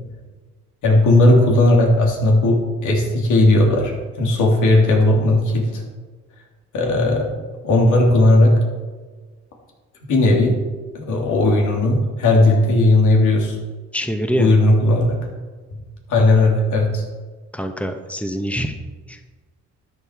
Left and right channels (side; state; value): both; normal; correlation 0.68